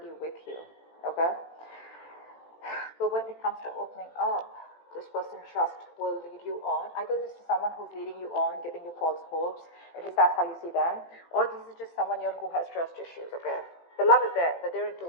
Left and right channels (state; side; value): late; right; 18 ms